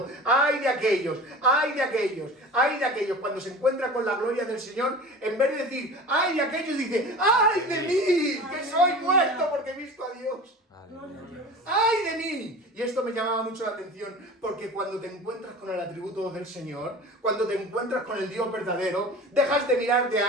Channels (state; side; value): normal; both; correlation 0.36